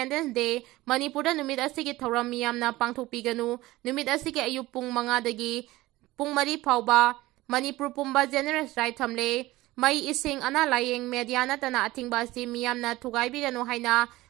Day Manipur da numit asigi thoram miyam na pangthokpiganu numit asigi ayupung mga dagi pung mari phauba Manipur pumba general strike thamle Mai ising ana layeng media na tana atingba si miyam na thugaibirano haina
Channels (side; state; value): left; quieter; 18.3 dB